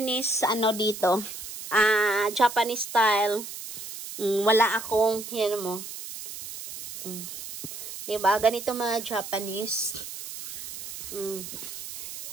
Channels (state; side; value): noise; right; hiss, 10 dB below the sound